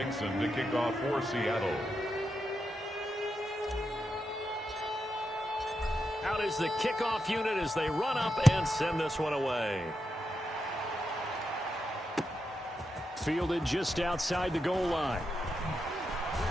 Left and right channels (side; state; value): both; normal; correlation 0.86